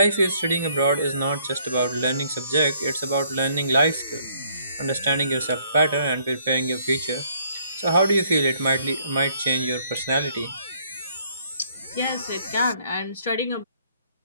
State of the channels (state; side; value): inverted; both; correlation -0.65